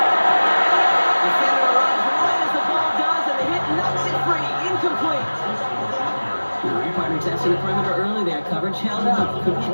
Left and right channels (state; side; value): inverted; both; correlation -1.00